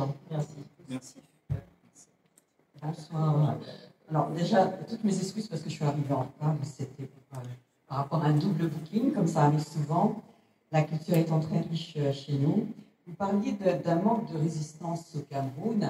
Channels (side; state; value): both; identical; correlation 1.00